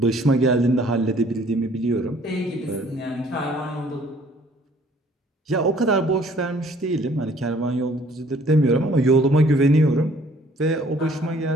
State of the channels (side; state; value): both; normal; correlation 0.58